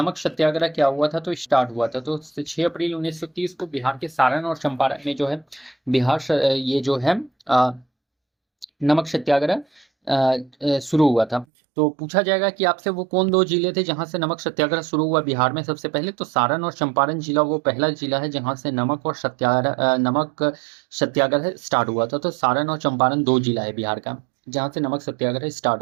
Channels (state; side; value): drops out; left; at 11.5 s